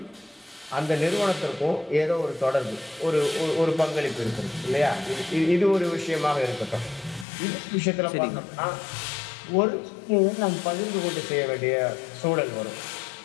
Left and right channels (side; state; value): right; drops out; at 7.2 s